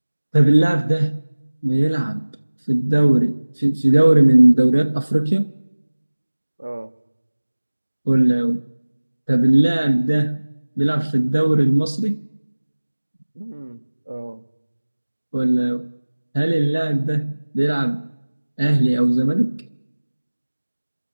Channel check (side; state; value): both; inverted; correlation -1.00